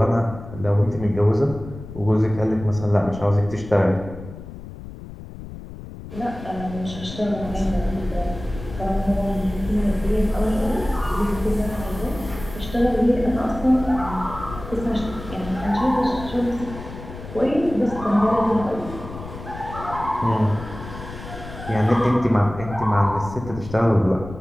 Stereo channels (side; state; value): left; noise; rumble, 12 dB below the sound